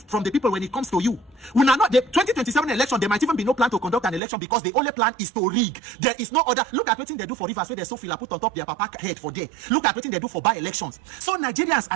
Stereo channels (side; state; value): left; drops out; at 4.2 s